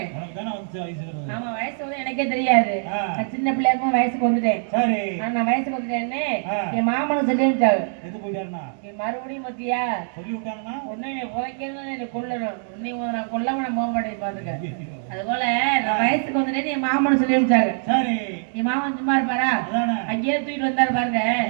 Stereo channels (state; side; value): silent; left; digital silence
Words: உனக்கு தானே வந்து வயசு வருது. ஆமா வயசு வந்து எனக்கே தெரியாது. நான் சின்ன பிள்ளையா இருக்கும் வயசுக்கு வந்துட்டேன். சரி. நான் வயசுக்கு வந்துட்டேன்னு என் மாமனும் சொல்லி விட்டாரு. எது போயிட்டாருன்னா? மறுபடியும் மத்தியா சொல்லி விட்டாங்கன்னா உன்னை புதைக்கணும் என்ன கொல்லணும். உன்னை நான் கொல்லாம நான் போக மாட்டேன் பாத்துக்க. அது போல நான் வயசுக்கு வந்துட்டேன்னு என் மாமனு சொல்லி விட்டாரு. சரி. என் மாமன் சும்மா இருப்பாரா? அங்கேயே தூக்கிட்டு வந்தாரு பாருங்க.